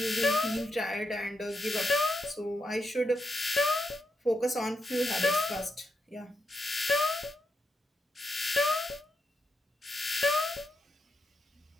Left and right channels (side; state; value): both; normal; correlation 0.84